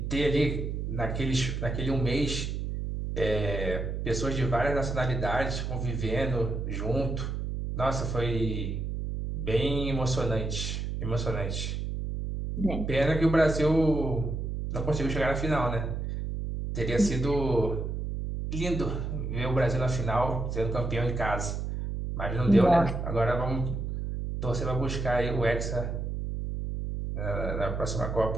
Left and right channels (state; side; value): noise; right; hum, 3 dB below the sound